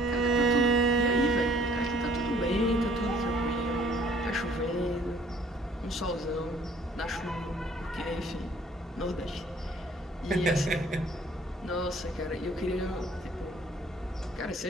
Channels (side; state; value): both; normal; correlation 0.58